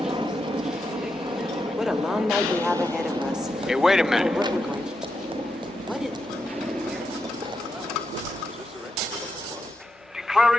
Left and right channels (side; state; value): both; normal; correlation 0.85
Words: What a long night we have ahead of us. Hey, wait a minute.